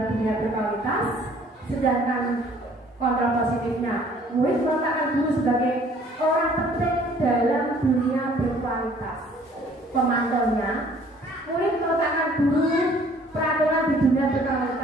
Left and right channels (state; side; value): normal; both; correlation 0.56